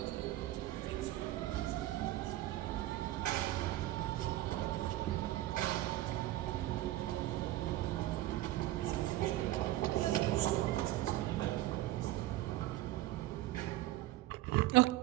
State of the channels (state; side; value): quieter; left; 15.8 dB